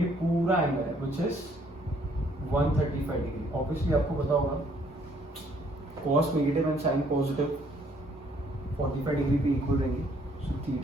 पूरा एंगल है व्हिच इज 135 डिग्री। ऑब्वियसली आपको पता होगा cos negative and sin positive 45 degree पे इक्वल रहेंगे। So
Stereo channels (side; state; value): both; normal; correlation 0.65